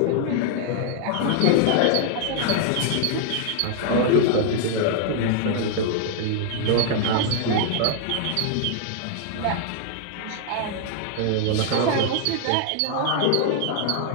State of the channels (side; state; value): both; different; correlation 0.00